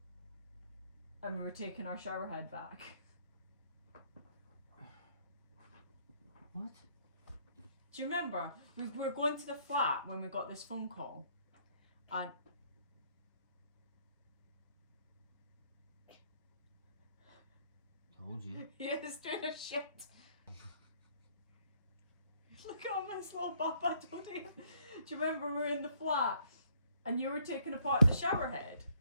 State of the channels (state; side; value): inverted; both; correlation -0.66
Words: and we were taking our shower head back? What? Do you remember? We were going to the flat when we got this phone call. And Told you. he is doing a shit. Look at all this little bump I told you. Do you remember we were in the flat and you were taking apart the shower head?